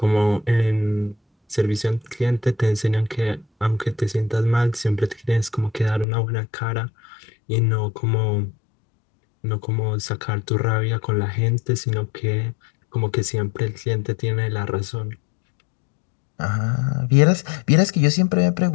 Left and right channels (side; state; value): right; drops out; at 6.1 s